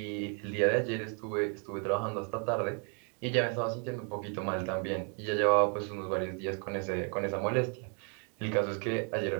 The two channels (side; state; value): left; quieter; 39.5 dB